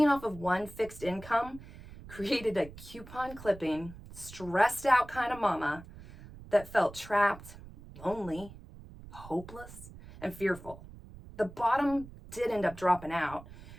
off of one fixed income created a coupon clipping, stressed out kind of mama that felt trapped, lonely, hopeless, and fearful. The bottom did end up dropping out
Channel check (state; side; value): noise; right; rumble, 17 dB below the sound